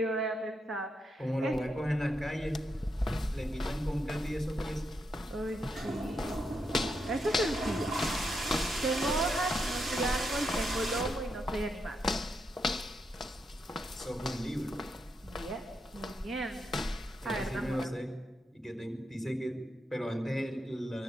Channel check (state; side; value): normal; both; correlation 0.82